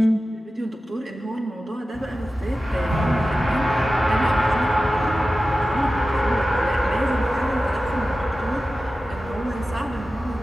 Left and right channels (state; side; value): normal; both; correlation 0.94